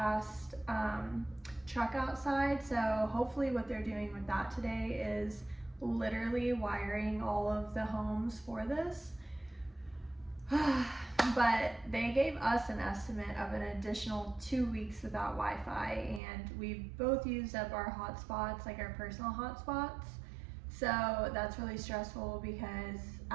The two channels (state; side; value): drops out; left; at 16.2 s